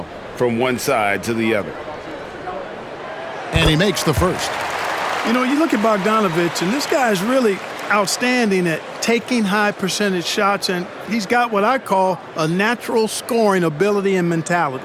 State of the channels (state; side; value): identical; both; correlation 1.00